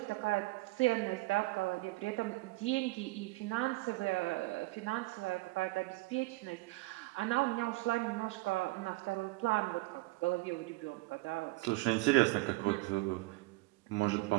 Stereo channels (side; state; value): left; quieter; 21.6 dB